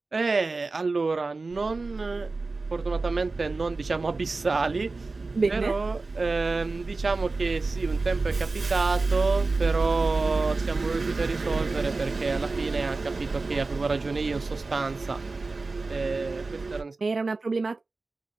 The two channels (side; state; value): left; quieter; 3.7 dB